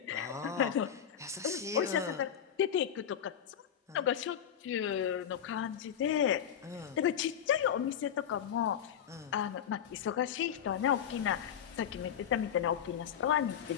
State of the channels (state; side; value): quieter; right; 9.0 dB